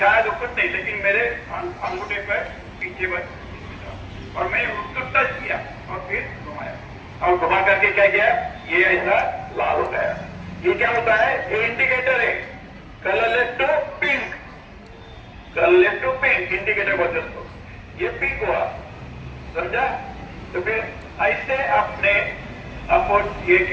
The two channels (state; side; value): identical; both; correlation 1.00